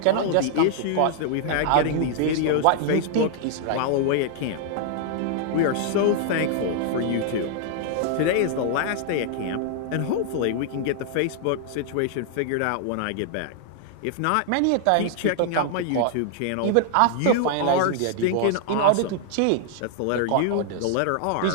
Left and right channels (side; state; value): both; different; correlation -0.01